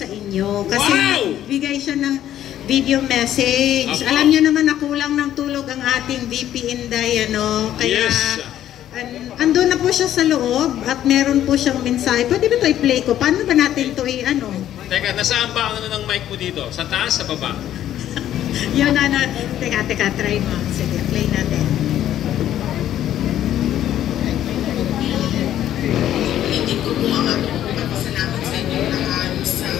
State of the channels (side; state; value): right; quieter; 11.7 dB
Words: inyo. Kasi bigay siya ng video message. Alam niyo naman na kulang ng tulog ang ating VP Inday, ano? Kaya, andun na po siya sa loob at meron po siyang mensahe. Pwede ba ito i-play ko? Paano ba natin ito i-ano? Teka, nasaan ba ang ng mic mo dito? Sa taas, sa baba? Yun, ano. Teka, try mo. Sige, play natin. Hindi ko po ang aking pagpapasalamat sa inyo lahat sa